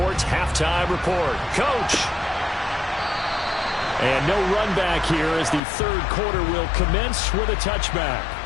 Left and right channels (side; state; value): right; drops out; at 5.6 s